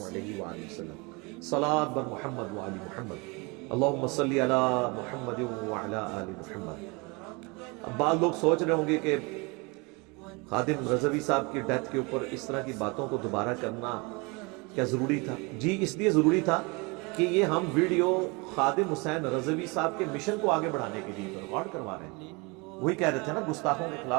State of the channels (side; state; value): left; quieter; 27.9 dB